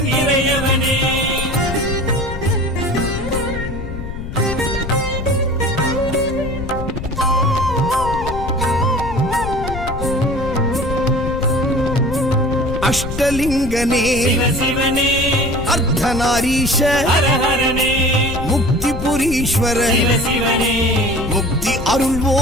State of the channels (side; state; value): left; noise; rumble, 8 dB below the sound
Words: இறையவனே. அஷ்டலிங்கனே சிவசிவனே, அர்த்தநாரீஷ ஹரஹரனே, முக்திபுரீஸ்வர சிவசிவனே, முக்தி